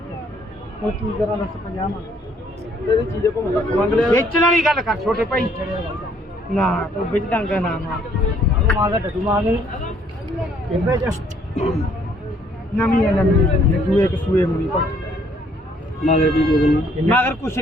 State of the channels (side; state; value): both; normal; correlation 0.64